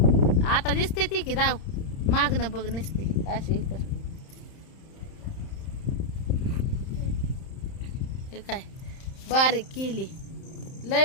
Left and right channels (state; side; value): late; right; 31 ms